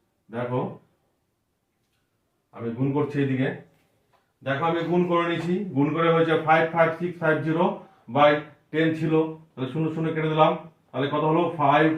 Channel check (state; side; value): identical; both; correlation 1.00